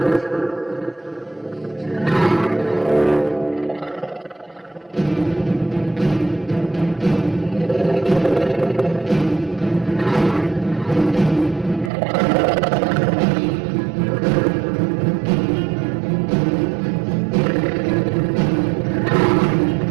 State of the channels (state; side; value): drops out; left; at 11.9 s